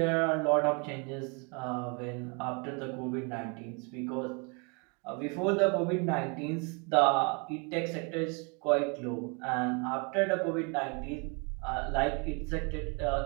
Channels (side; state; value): left; quieter; 33.5 dB